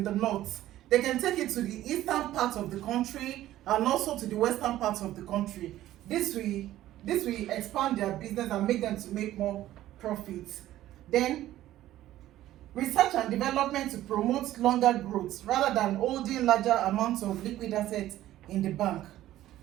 the north. They can take it to the eastern part of the country and also to the western part of the country. This will expand their business and make them to make more profits. Then research and development to promote longer growth rather than holding larger amounts of liquid assets in the bank.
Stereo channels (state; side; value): quieter; left; 14.1 dB